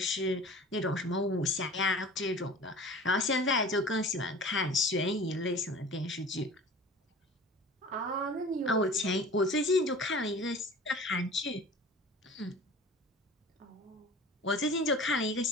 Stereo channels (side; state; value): both; normal; correlation 0.41